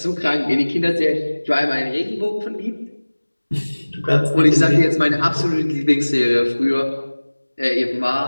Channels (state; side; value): inverted; both; correlation -1.00